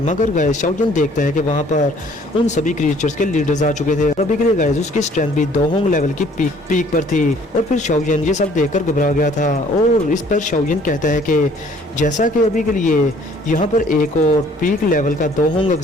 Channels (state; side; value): normal; both; correlation 0.57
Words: मगर गाइस शाओयन देखता है कि वहां पर उन सभी क्रिएचर्स के लीडर्स आ चुके थे। अभी के लिए गाइस उसकी स्ट्रेंथ भी दोहोंग लेवल की पीक पर थी। और फिर शाओयन ये सब देखकर घबरा गया था। और इस पर शाओयन कहता है कि जैसा कि अभी के लिए यहाँ पर एक और पीक लेवल का दोहोंग